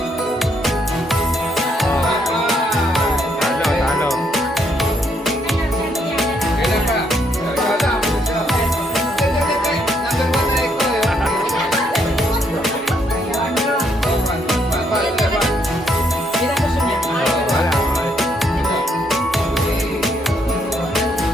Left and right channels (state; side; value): normal; both; correlation 0.73